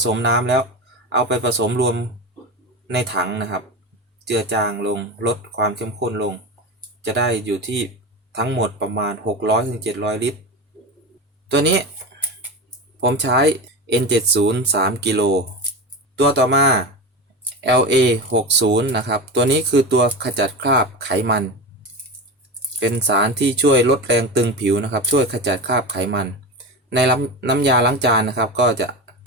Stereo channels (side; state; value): both; normal; correlation 0.23